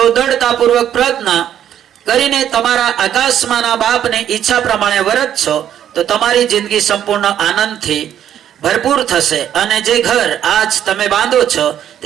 दृढ़तापूर्वक प्रार्थना करीने तमारा आकाशमाना बापने इच्छा प्रमाणे वर्त छो तो तमारी जिंदगी संपूर्ण आनंदथी भरपूर थशे अने जे घर आज तमे बांधो छो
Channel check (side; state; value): left; quieter; 10.3 dB